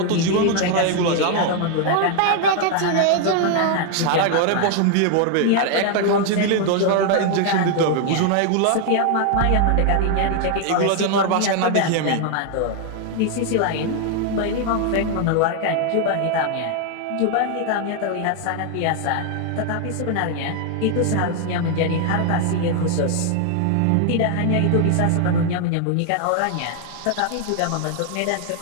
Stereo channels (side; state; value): both; different; correlation 0.00